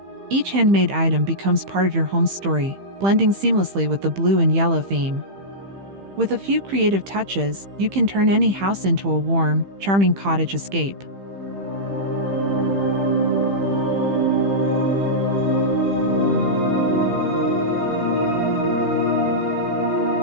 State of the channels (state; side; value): late; left; 15 ms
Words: Each handmade item becomes part of your home's story, blending seamlessly with the blue and yellow theme. With a few creative touches, you can turn any house into a warm, charming cottage escape.